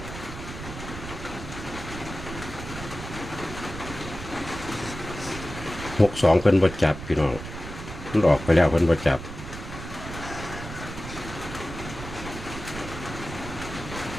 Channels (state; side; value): noise; right; rumble, 10 dB below the sound